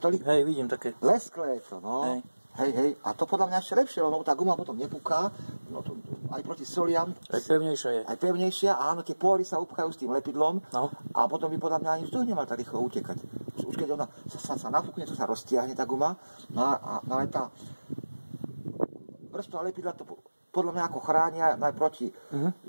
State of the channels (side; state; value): both; inverted; correlation -1.00